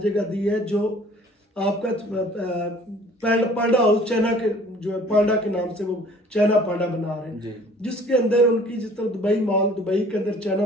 दी है, जो आपका पांडा हाउस चाइना के जो है पांडा के नाम से वो चाइना पांडा बना रहे हैं, जिसके अंदर उनकी जिस तरह दुबई मॉल, दुबई के अंदर चाइना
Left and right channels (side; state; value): both; normal; correlation 0.52